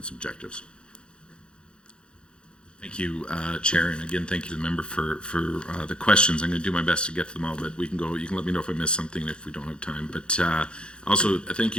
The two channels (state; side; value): late; right; 0.053 ms